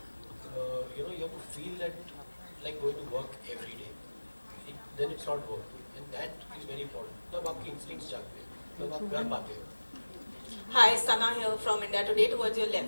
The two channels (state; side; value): inverted; both; correlation -1.00